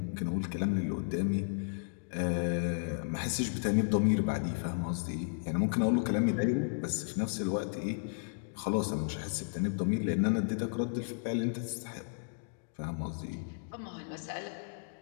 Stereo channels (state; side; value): silent; right; digital silence